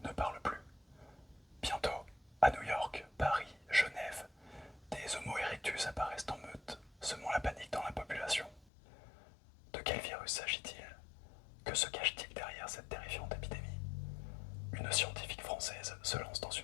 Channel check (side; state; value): right; drops out; at 8.7 s